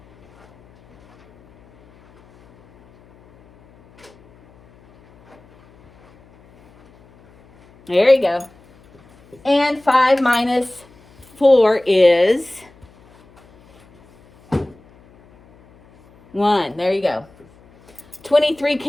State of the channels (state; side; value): noise; left; hum, 29 dB below the sound